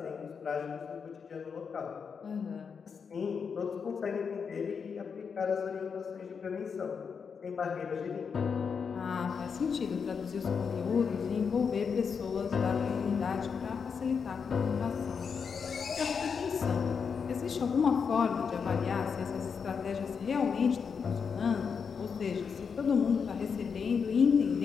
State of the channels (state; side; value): quieter; right; 6.1 dB